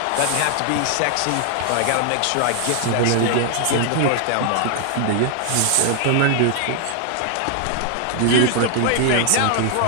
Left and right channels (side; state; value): both; different; correlation 0.00